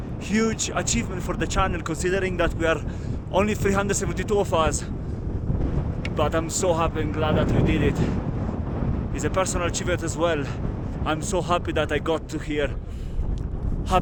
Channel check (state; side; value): identical; both; correlation 1.00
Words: achievement for the channel, considering that we are only 372 of us. But I'm so happy and glad that we did it. It's a personal achievement as well. I'm so happy that I got to here.